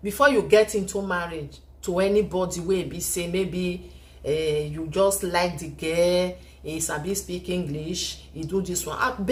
before you get into marriage to anybody where be say maybe you just like the girl, he sabi speak English, he do this one. I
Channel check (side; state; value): both; identical; correlation 1.00